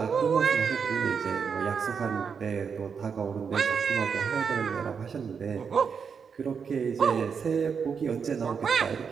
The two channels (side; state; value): left; quieter; 6.3 dB